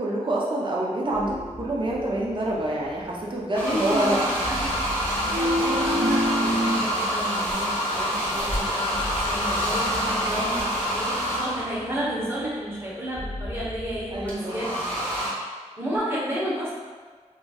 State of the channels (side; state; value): both; normal; correlation 0.53